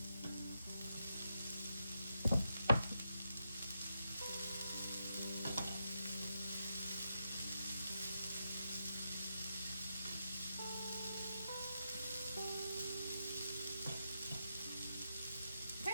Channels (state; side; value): inverted; both; correlation -0.83